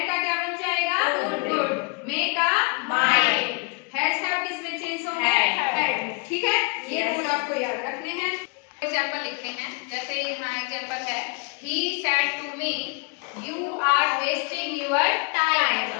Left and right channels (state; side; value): quieter; right; 33.0 dB